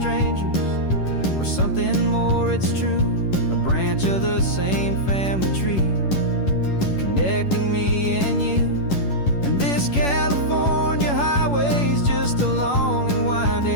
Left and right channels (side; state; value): right; late; 11 ms